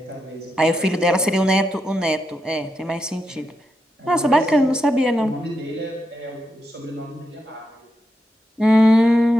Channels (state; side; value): normal; both; correlation 0.85